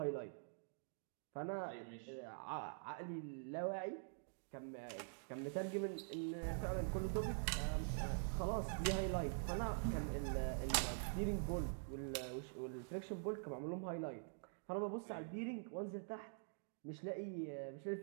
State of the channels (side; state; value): left; silent; digital silence